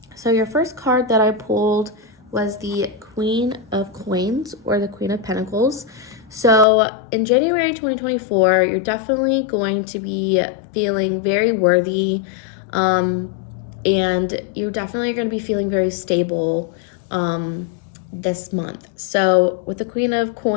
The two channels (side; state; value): right; drops out; at 6.7 s